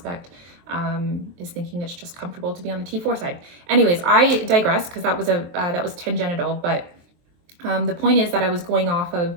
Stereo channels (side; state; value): left; late; 23 ms